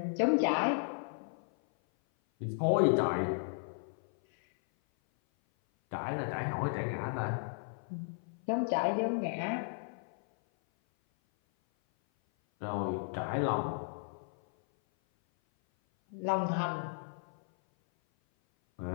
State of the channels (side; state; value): right; silent; 55 dB below the other